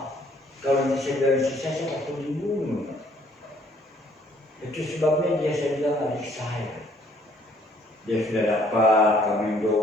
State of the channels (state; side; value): normal; both; correlation 0.62